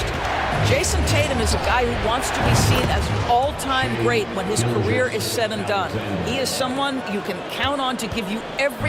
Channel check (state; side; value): identical; both; correlation 1.00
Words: Jason Tatum is a guy who wants to be seen as an all-time great when his career is said and done. He is someone you can count on to give you